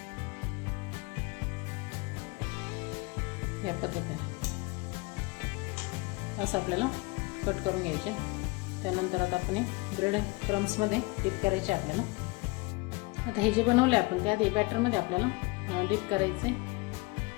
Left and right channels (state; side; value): quieter; right; 24.8 dB